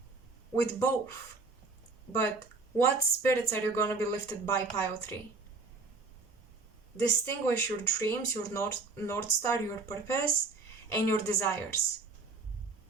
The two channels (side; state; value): left; quieter; 4.0 dB